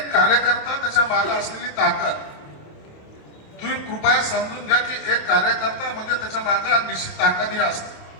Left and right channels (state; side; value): late; right; 28 ms